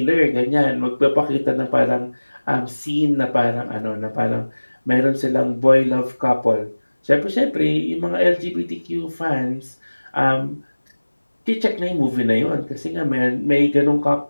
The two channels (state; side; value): inverted; both; correlation -1.00